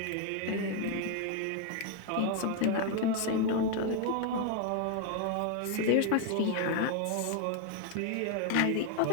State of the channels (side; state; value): both; different; correlation 0.01